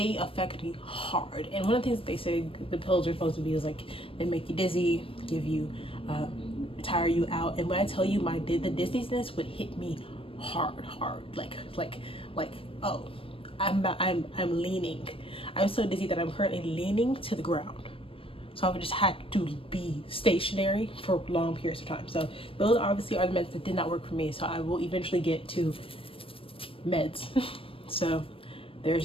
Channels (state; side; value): late; right; 0.26 ms